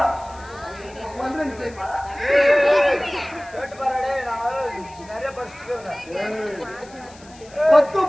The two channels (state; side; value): noise; left; hiss, 24 dB below the sound